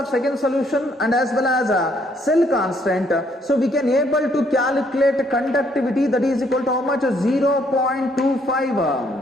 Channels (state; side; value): normal; both; correlation 0.68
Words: second solution and as well as cell constant, so we can able to calculate conductivity, that is equal to how much?